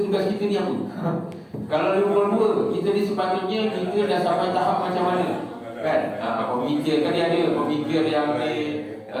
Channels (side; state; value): both; identical; correlation 1.00